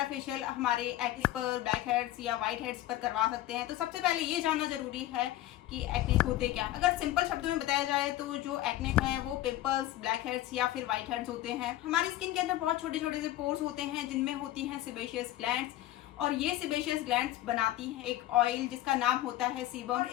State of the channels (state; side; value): quieter; right; 14.5 dB